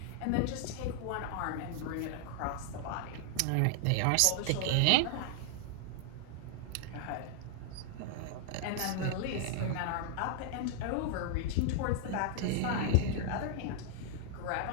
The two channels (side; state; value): both; different; correlation 0.00